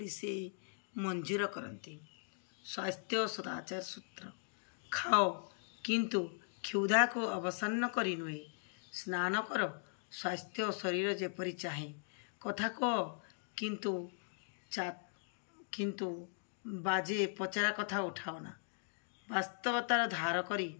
से मंजूर करती। स्वास्थ्य सदाचार सूत्र खाओ किंतु क्षुधा को अवसन्न करी नुहे स्नान कर स्वास्थ्य शरीर जेपरी चाहे कथा कह किंतु बाजे पचरा कथा उठाओना वास्तवतार धार करी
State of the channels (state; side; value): silent; right; digital silence